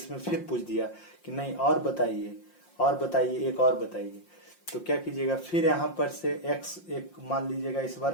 फिर पूछ दिया कि नहीं और बताइए, और बताइए, एक और बताइए, तो क्या कीजिएगा, फिर यहाँ पर से x एक मान लीजिएगा, इस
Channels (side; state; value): right; late; 5.7 ms